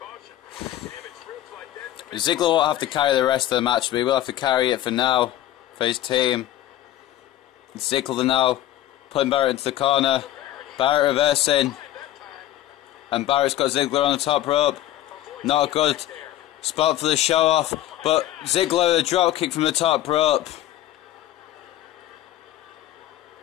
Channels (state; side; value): quieter; right; 13.5 dB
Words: Ziggler won't have to carry the rest of the match, but he will have to carry it for now, for his team. Ziggler now putting Barrett into the corner. Barrett reversing. And Barrett's got Ziggler on the top rope. Not a good spot for the show off, but Ziggler a drop kick from the top rope.